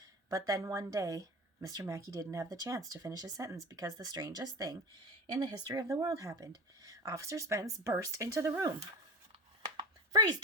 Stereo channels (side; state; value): both; normal; correlation 0.28